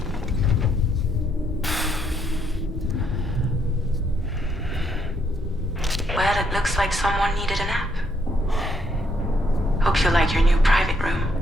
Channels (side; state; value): both; normal; correlation 0.73